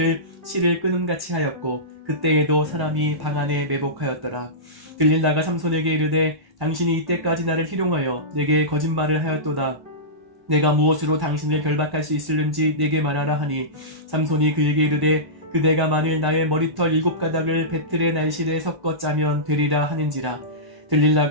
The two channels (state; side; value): late; left; 1.1 ms